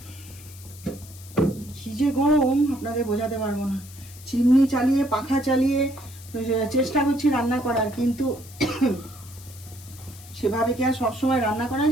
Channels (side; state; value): left; noise; hiss, 19 dB below the sound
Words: কি যে গরম আপনাদের বোঝাতে পারবো না। চিমনি চালিয়ে পাখা চালিয়ে চেষ্টা করছি রান্না করার, কিন্তু সেভাবে কি আর সবসময় রান্না করা